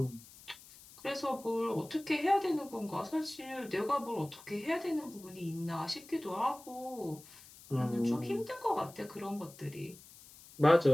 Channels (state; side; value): noise; left; hiss, 20 dB below the sound